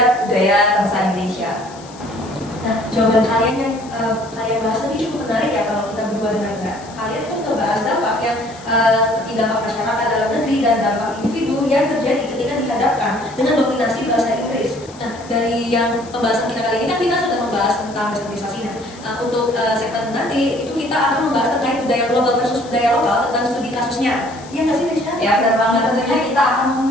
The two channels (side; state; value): left; noise; hiss, 21 dB below the sound